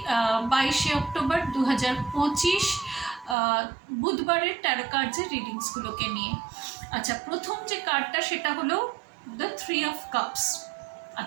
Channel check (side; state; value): left; drops out; at 3.4 s